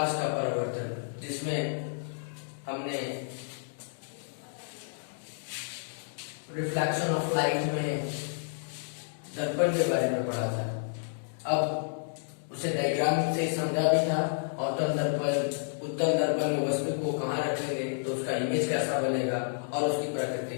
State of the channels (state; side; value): silent; right; digital silence